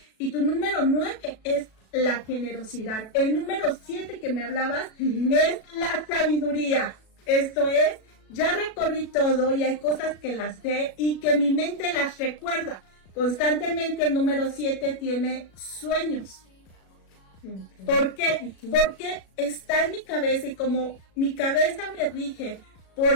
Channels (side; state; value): right; late; 37 ms